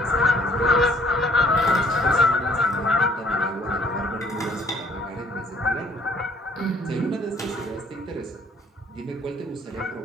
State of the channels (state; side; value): normal; both; correlation 0.60